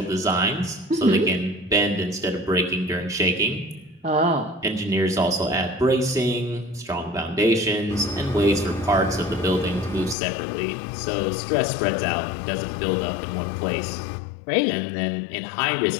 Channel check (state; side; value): drops out; right; at 10.2 s